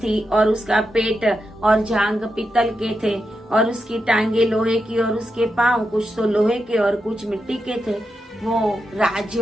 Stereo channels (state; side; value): normal; both; correlation 0.87